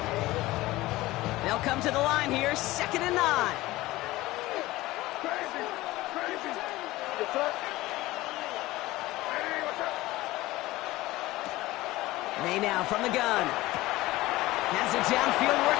They'll come to the line here, 2nd and 9. May now from the gun. Has it downfield,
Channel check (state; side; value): quieter; right; 18.3 dB